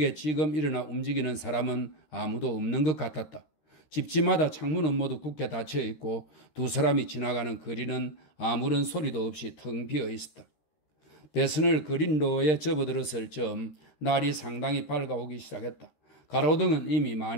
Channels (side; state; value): right; late; 13 ms